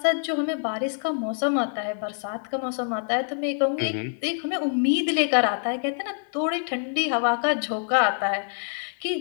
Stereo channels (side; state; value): right; silent; 61 dB below the other